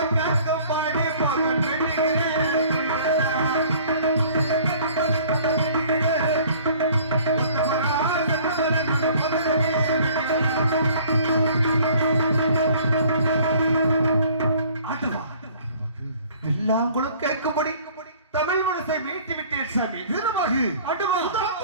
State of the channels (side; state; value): both; inverted; correlation -0.53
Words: வெள்ளாங்குளம் கேட்கும்படி தமிழ் மனசை மீட்டி விட்டேன் சாமி. வீரமாகு